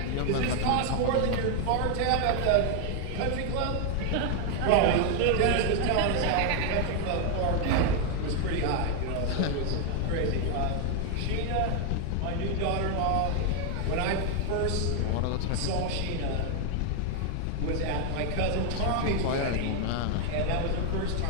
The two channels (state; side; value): different; both; correlation 0.00